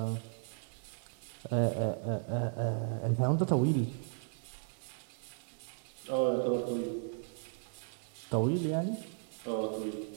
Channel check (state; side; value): silent; left; digital silence